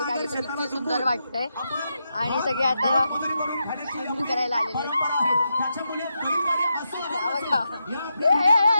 आली तर किती सुंदर वाटतंय आणि सगळे आता स्विमिंग करायला आलेले.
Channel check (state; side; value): inverted; both; correlation -0.85